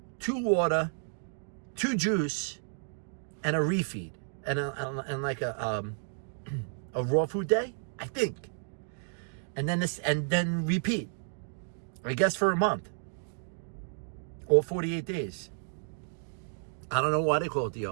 water, 2 juice, and a refeed, and like a raw food day, I think, and then repeat. I guess for a month or 48 days. I don't know why they call it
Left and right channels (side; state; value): left; silent; digital silence